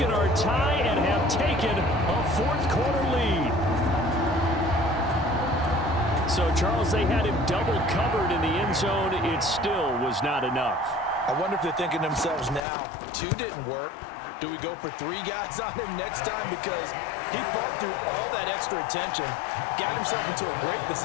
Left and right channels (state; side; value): drops out; right; at 12.6 s